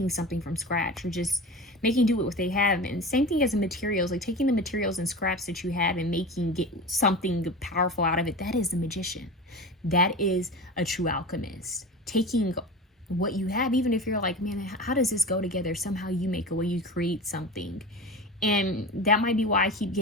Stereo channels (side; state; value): both; normal; correlation 0.30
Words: something from scratch, or just making do with what they have. And same thing as the materials, like taking the materials and scraps that you have and get something powerful out of it. That is the magician. That is a true alchemist. Taking what you have, even if you're like, man, how does this go together? Somehow you make a way, you create something. And that might be why I keep